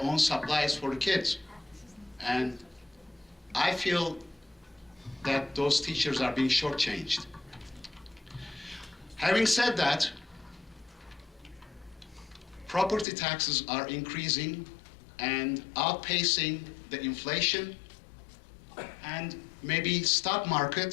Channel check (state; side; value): drops out; right; at 13.1 s